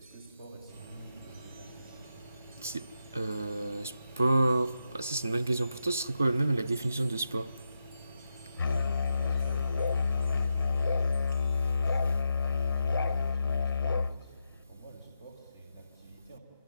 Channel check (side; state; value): both; inverted; correlation -0.86